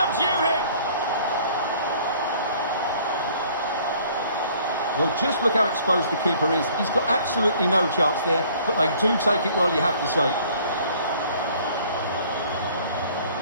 him. Well, just look how exposed the keeper is. He's got absolutely no chance there, but they do take it well, you have to say.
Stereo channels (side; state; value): both; inverted; correlation -0.56